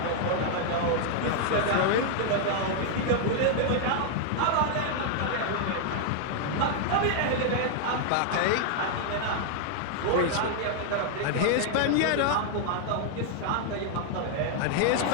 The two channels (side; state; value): both; different; correlation 0.00